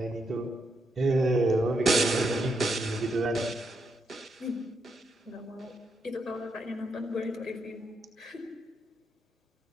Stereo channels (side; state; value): both; normal; correlation 0.80